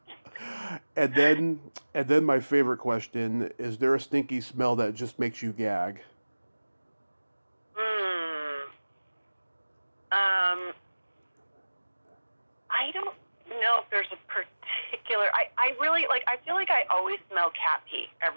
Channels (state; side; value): inverted; both; correlation -1.00